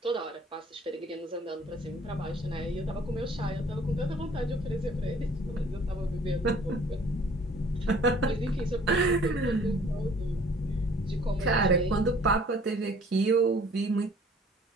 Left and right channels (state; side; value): normal; both; correlation 0.54